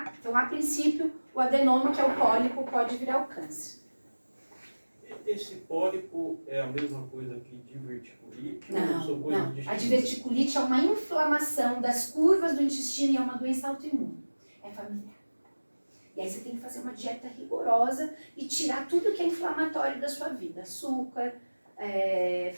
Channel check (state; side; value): inverted; both; correlation -1.00